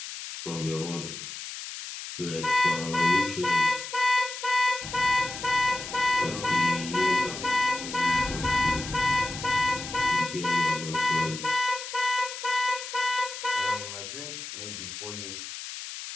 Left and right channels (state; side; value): noise; left; hiss, 9 dB below the sound